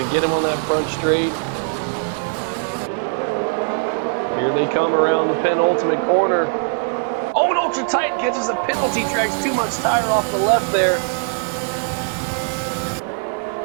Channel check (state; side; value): silent; left; 65 dB below the other